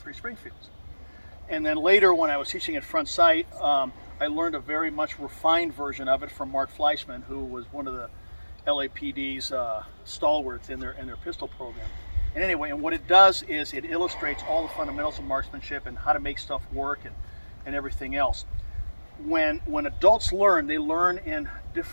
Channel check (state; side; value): inverted; both; correlation -1.00